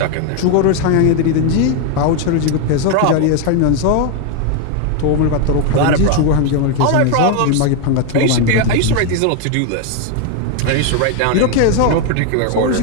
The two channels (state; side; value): different; both; correlation 0.01